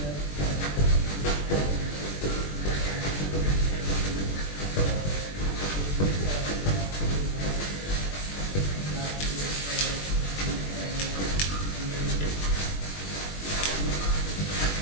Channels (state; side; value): late; right; 21 ms